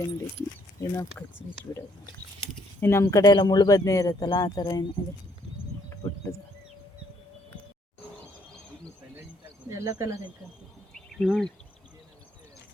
ನೋಡಿ. ಏನೋ ಕಚ್ಚಿ ಬಿಡೋದು. ಇನ್ನು ನಮ್ಮ ಕಡೆ ಎಲ್ಲ ಮುಳ್ಳು ಬದನೆ ಇರುತ್ತಲ್ಲ, ಆ ಥರ ಏನಿದೆ ಪುಟ್ಟದು. ಎಲ್ಲ ಕಲರ್ ಐತೆ.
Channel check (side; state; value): both; normal; correlation 0.67